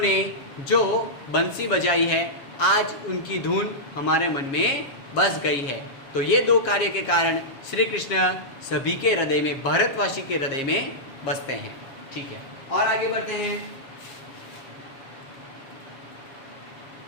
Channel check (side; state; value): right; late; 7.3 ms